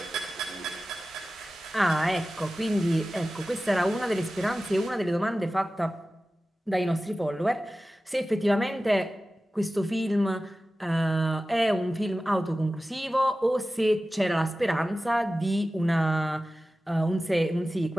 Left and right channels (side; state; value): both; normal; correlation 0.95